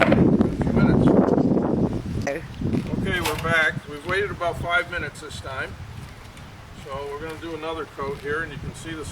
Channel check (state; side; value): identical; both; correlation 1.00